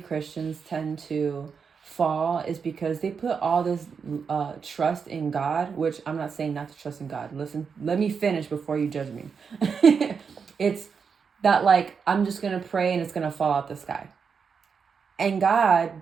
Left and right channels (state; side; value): quieter; left; 6.0 dB